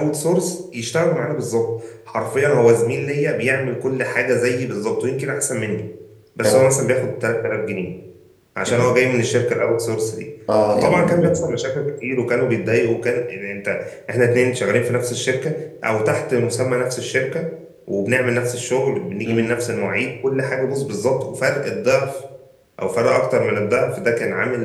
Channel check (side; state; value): both; identical; correlation 1.00